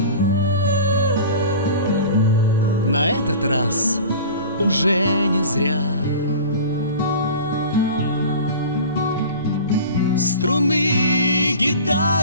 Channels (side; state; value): both; inverted; correlation -0.37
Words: На этот раз уже не зря струны